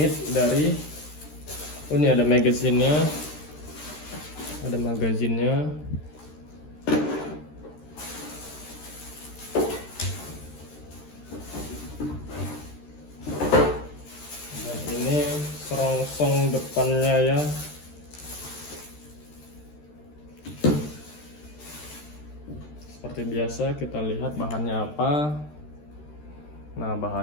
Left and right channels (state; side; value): late; right; 13 ms